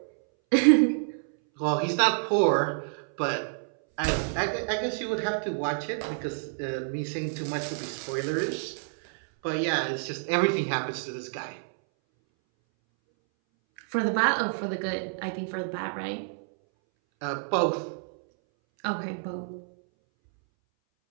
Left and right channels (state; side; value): silent; left; 59 dB below the other